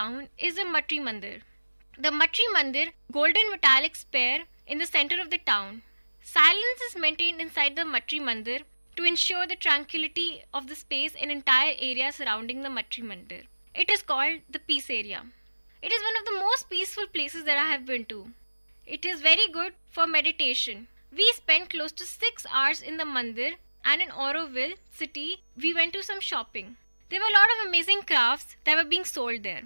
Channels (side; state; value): both; inverted; correlation -1.00